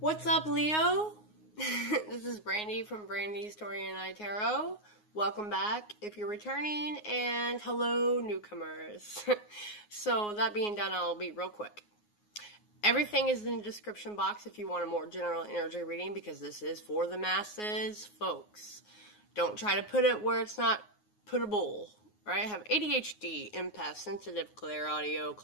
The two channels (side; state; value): right; late; 9.5 ms